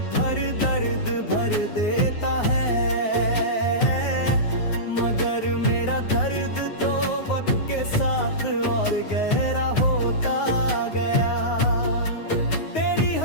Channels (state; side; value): late; right; 9.5 ms